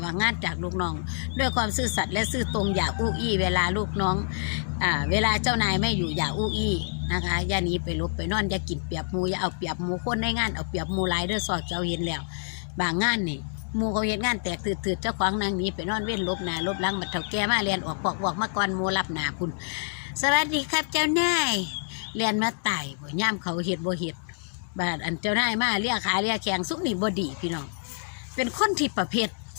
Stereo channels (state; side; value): silent; right; digital silence